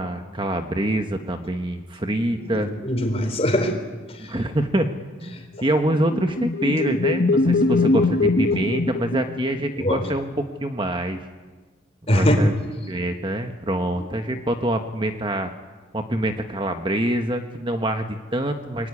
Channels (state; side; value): normal; both; correlation 0.63